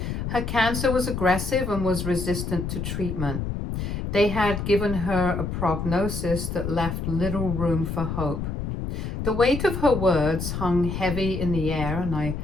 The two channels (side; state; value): left; noise; rumble, 4 dB below the sound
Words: Her cancer was aggressive and was resistant to treatment. They had given her a prognosis that left little room for hope. The weight of her words hung heavy in the air, and I